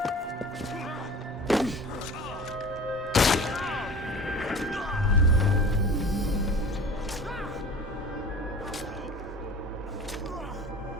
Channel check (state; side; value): normal; both; correlation 0.40